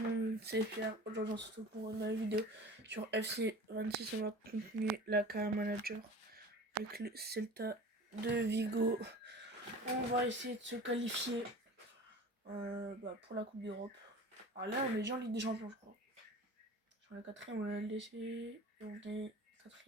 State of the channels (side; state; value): both; normal; correlation 0.39